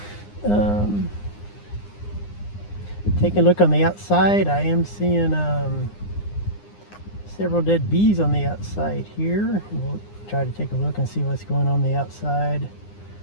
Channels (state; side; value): late; right; 9.8 ms